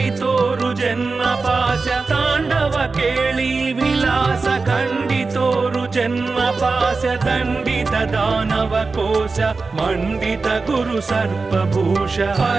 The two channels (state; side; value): quieter; left; 4.1 dB